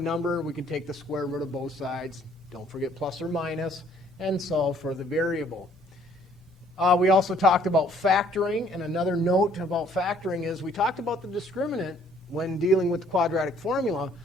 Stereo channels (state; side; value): normal; both; correlation 0.61